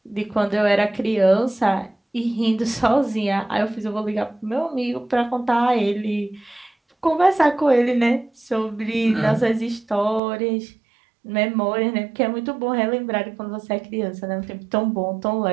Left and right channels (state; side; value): drops out; left; at 10.2 s